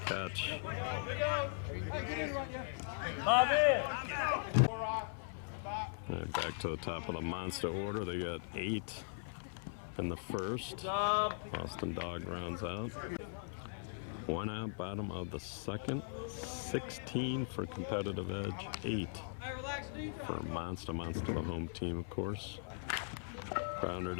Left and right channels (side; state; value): right; silent; 52 dB below the other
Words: And back to the top of the Monsta order. They got 8 in the first. Austin Dog rounds out. 1 out, bottom of the second. 16 for competitive edge. 8 for Monsta. Monsta, the home team, of course. Grounder